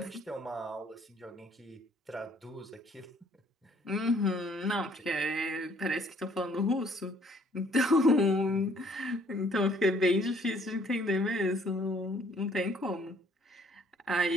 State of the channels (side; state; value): both; normal; correlation 0.61